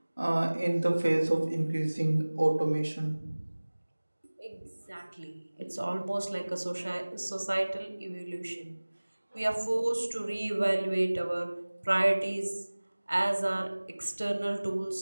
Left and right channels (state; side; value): inverted; both; correlation -1.00